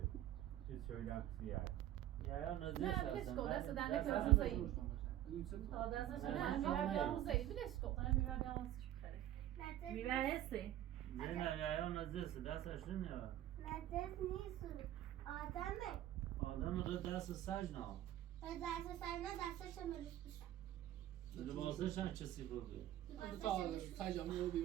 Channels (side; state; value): left; quieter; 13.0 dB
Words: چیز شویدم کسیه یا نزد نه بلش کن دست دنده که دست روزه ای تا دستش نه میره بیا روزه ای بلش کن میره بیا واسش بخره میره هستی نه یا نزد دستش نمیاد نزد نیست آدمه آدم رو دست سج نه دست سرنا دستش مروش بشه لباسش هم چه سیفر بیه تا سجامه رو